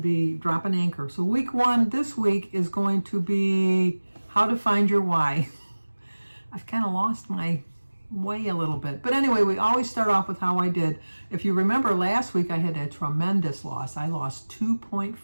be drop and anchor. So week one this week is going to be how to find your why. I've kind of lost my way a little bit. But anyway, we always start off with how I did. If you remember last week, I had a tremendous loss. I lost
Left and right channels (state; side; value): inverted; both; correlation -1.00